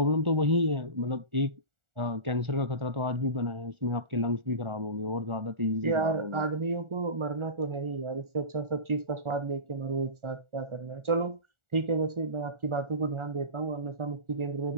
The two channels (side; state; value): left; late; 1.4 ms